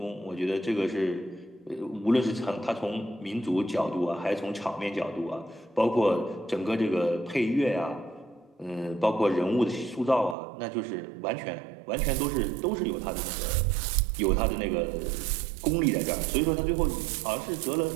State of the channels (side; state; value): left; drops out; at 10.4 s